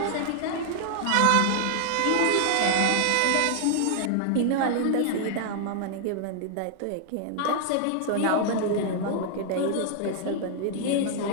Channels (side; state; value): both; different; correlation -0.01